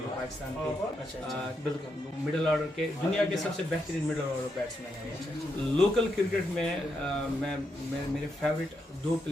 पाकिस्तान के अच्छा, बिल्कुल मिडल ऑर्डर के दुनिया के सबसे बेहतरीन मिडल ऑर्डर बैट्समैन हैं। लोकल क्रिकेट में मैं मेरे फेवरेट 2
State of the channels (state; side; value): normal; both; correlation 0.81